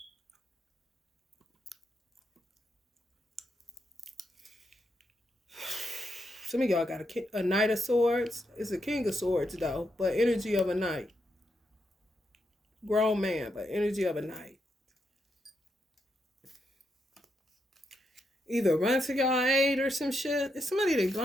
Some of y'all got a Knight of Swords. It's a King of Swords, though, but energy of a knight. Grown man, but energy of a knight. Either run to y'all aid or some shit. It's somebody they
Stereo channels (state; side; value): normal; both; correlation 0.82